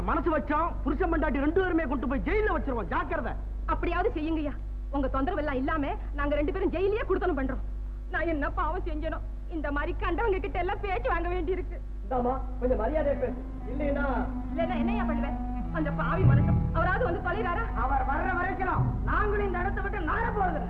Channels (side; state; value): both; identical; correlation 1.00